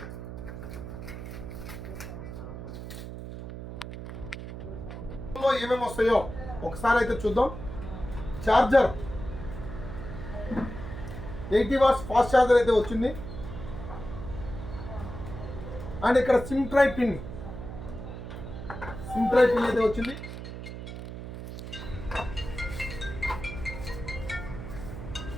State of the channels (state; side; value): noise; right; hum, 9 dB below the sound